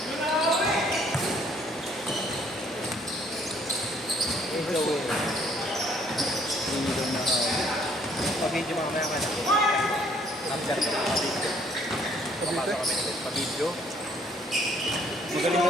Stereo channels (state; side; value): normal; both; correlation 0.63